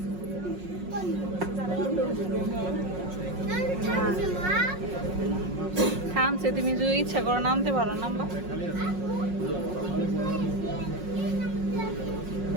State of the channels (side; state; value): left; late; 5.5 ms